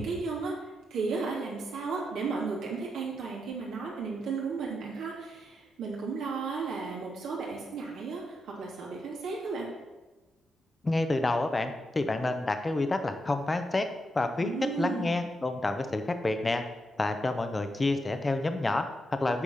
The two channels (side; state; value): both; normal; correlation 0.84